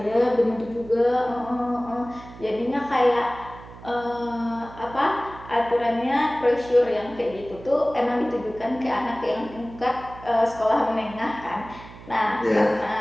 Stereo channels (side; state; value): right; noise; hum, 17 dB below the sound